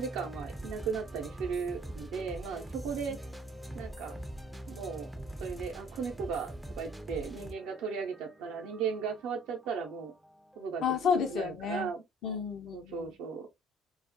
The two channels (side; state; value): both; normal; correlation 0.54